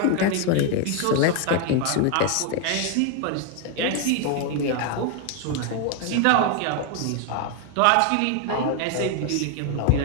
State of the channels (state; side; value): different; both; correlation 0.01